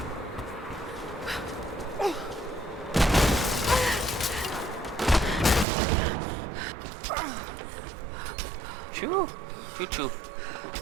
Chou, chou chou.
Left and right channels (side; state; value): left; drops out; at 5.7 s